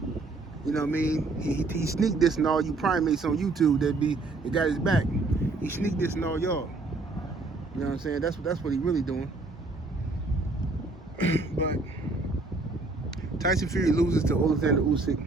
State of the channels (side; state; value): left; quieter; 3.4 dB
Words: You know what I mean? He sneak dissing all you primates on YouTube that got his back. He sneak dissing all y'all. You know what I'm saying? That's what he really doing. But Tyson Fury loses to Alexander Usyk,